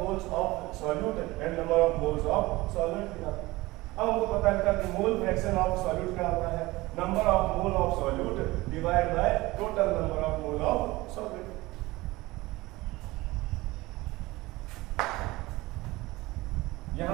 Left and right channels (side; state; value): left; quieter; 20.2 dB